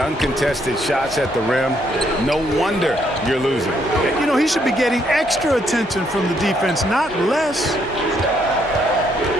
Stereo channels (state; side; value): normal; both; correlation 0.72